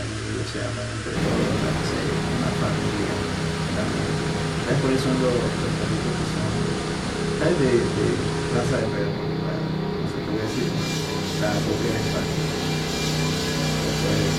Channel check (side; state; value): both; identical; correlation 1.00